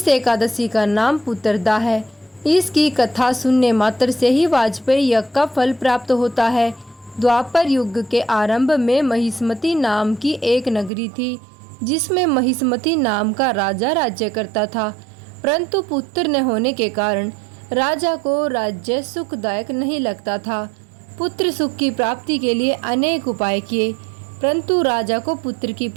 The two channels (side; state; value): left; drops out; at 10.9 s